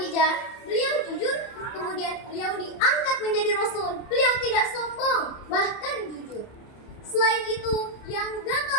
beliau jujur, kemudian beliau diangkat menjadi Rasul, beliau tidak sombong, bahkan jujur. Selain itu, yang gak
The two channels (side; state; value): right; late; 30 ms